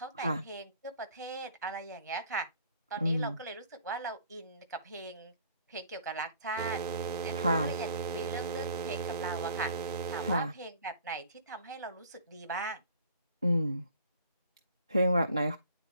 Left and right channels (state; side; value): inverted; both; correlation -0.53